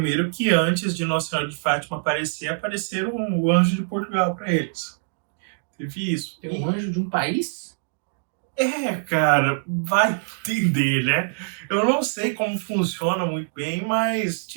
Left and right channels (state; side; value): silent; left; digital silence